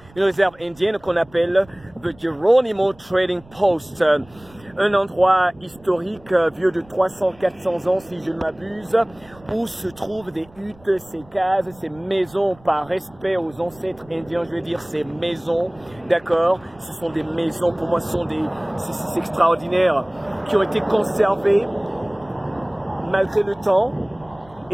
qu'on appelle The Geronimo Trading Post. Un endroit historique vieux de 300-400 ans si je ne m'abuse, où se trouvent des huttes, ces cases, ces maisons par respect aux ancêtres indiens, je veux dire ces maisons, d'accord? Ce sont des maisons, pour moi ce sont c'est extraordinaire, qui ont été conservées malgré le temps.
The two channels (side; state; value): right; noise; rumble, 25 dB below the sound